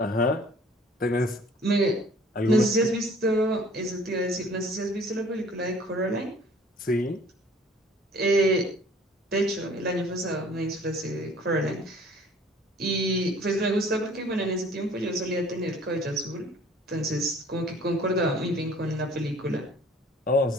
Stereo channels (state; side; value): normal; both; correlation 0.53